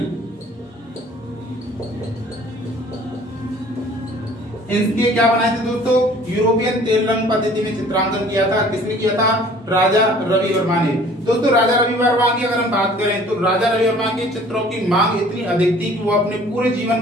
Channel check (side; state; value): both; normal; correlation 0.52